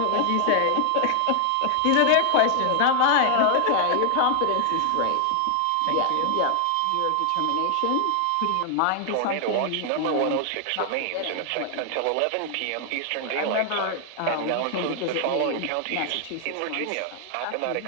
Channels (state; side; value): different; both; correlation 0.00